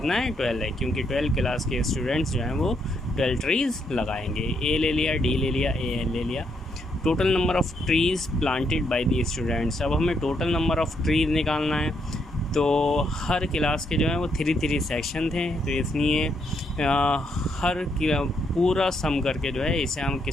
है 12 है, क्योंकि 12 क्लास के स्टूडेंट्स जो हैं वो 12 ट्रीज़ लगाएंगे। ए ले लिया, डी ले लिया, ए ले लिया। Total number of trees planted by the students. अब हमें टोटल नंबर ऑफ़ ट्रीज़ निकालना है, तो हर क्लास के जो हैं वो 3 सेक्शन थे, तो इसलिए हर पूरा सम करके जो है इसे हम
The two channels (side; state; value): both; normal; correlation 0.76